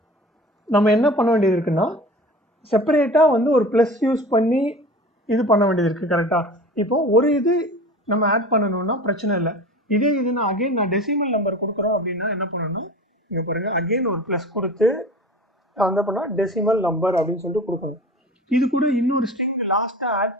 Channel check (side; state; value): both; normal; correlation 0.38